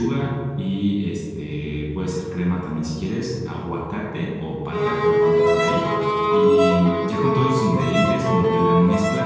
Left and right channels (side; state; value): both; identical; correlation 1.00